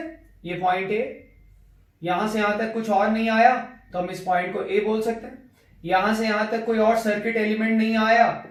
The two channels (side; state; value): both; identical; correlation 1.00